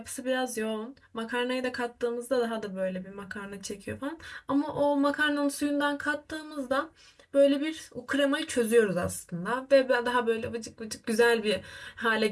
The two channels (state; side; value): identical; both; correlation 1.00